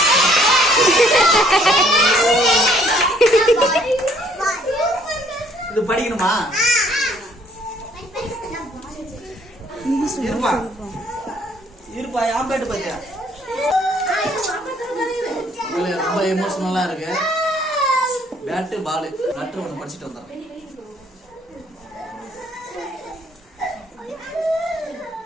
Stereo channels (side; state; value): both; normal; correlation 0.63